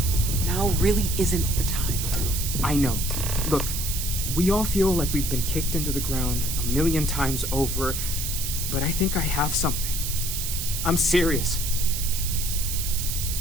Now really isn't the time. I know. Look, we all feel like we've been kicked into the ground a million times over, but I think I have something. I'm serious.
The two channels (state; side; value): noise; right; hiss, 3 dB below the sound